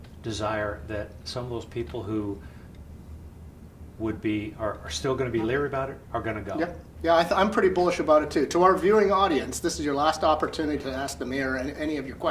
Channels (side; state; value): both; identical; correlation 1.00